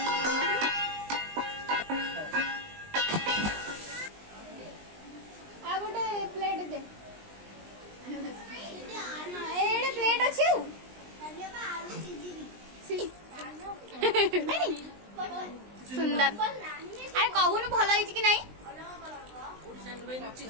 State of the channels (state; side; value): late; left; 20 ms